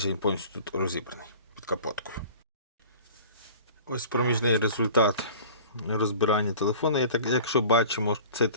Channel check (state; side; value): inverted; both; correlation -0.43